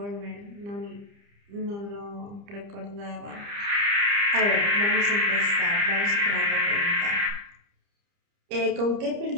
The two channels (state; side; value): late; left; 30 ms